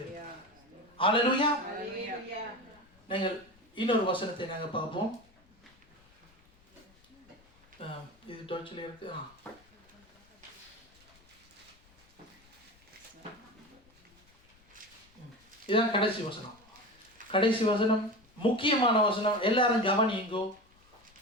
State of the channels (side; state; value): left; noise; rumble, 30 dB below the sound